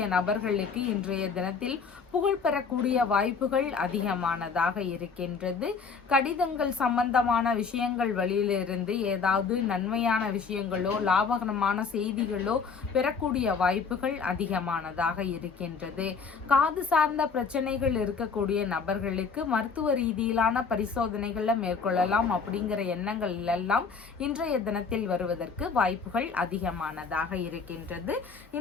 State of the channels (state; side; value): quieter; right; 5.4 dB